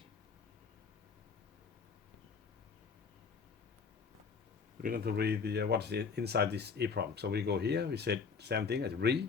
the what's inside this EEPROM. So we go here. We said same thing as read,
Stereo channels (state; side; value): quieter; right; 5.5 dB